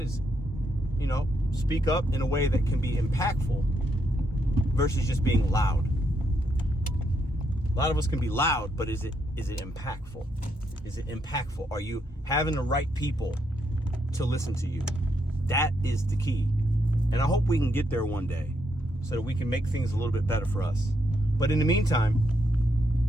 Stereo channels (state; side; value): normal; both; correlation 0.78